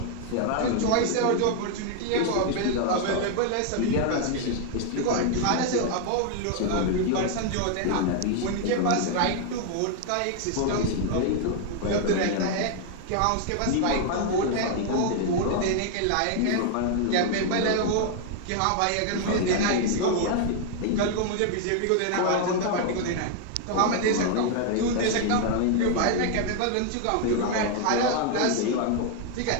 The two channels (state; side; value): different; both; correlation 0.00